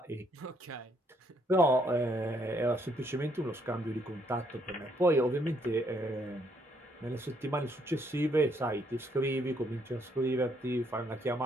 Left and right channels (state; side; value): normal; both; correlation 0.70